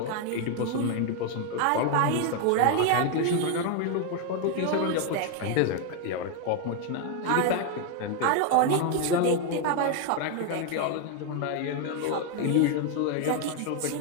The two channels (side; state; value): both; different; correlation 0.01